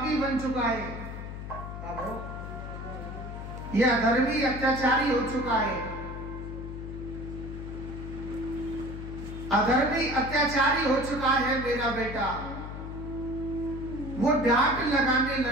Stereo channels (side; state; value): left; noise; hum, 8 dB below the sound